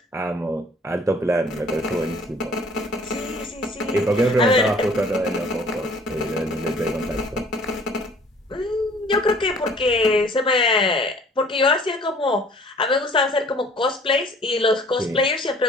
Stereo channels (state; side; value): normal; both; correlation 0.54